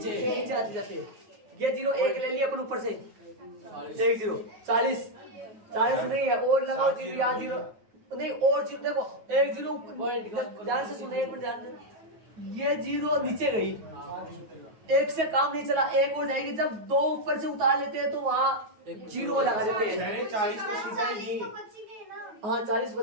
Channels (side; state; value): left; late; 9.3 ms